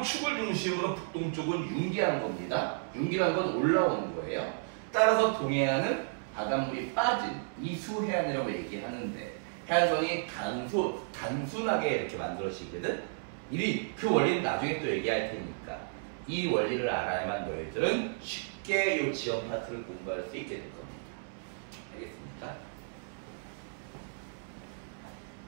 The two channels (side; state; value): left; silent; 56 dB below the other